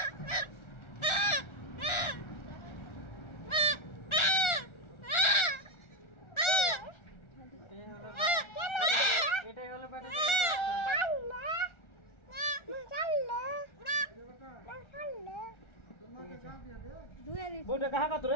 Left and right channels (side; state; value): right; late; 1.4 ms